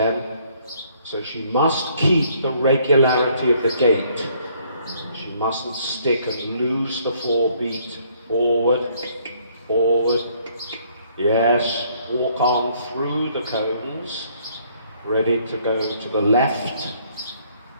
So she must keep the regularity of the gait. She mustn't stick and lose the 4 beat. Forward, forward. Yes, walk on through the cones. Ready to go to the left.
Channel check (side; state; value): both; inverted; correlation -0.65